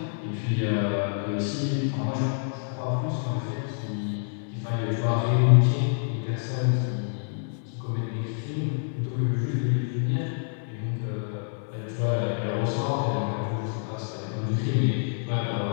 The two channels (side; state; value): right; silent; digital silence